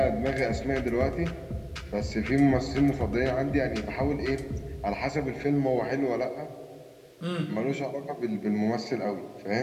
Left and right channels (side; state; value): both; identical; correlation 1.00